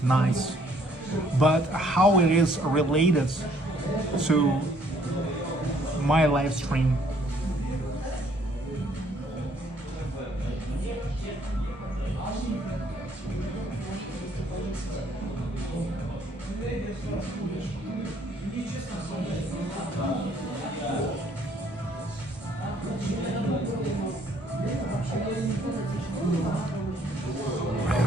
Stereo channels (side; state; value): both; normal; correlation 0.63